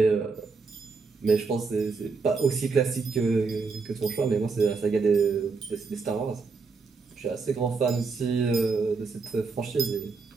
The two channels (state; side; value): quieter; left; 4.5 dB